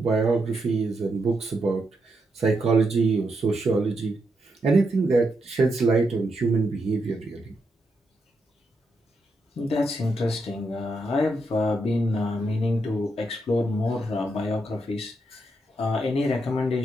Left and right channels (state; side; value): normal; both; correlation 0.81